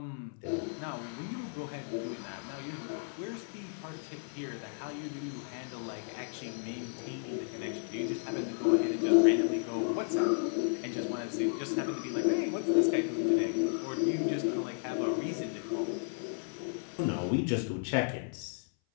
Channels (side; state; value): right; silent; 55 dB below the other